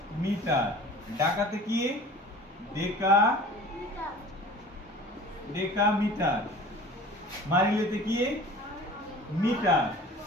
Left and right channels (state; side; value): normal; both; correlation 0.42